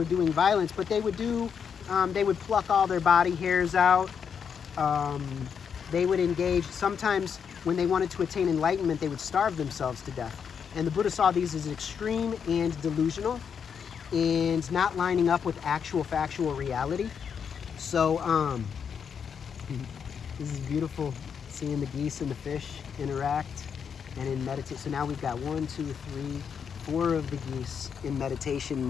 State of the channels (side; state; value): right; quieter; 7.0 dB